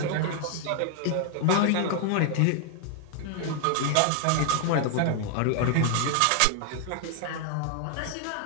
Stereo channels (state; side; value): different; both; correlation 0.00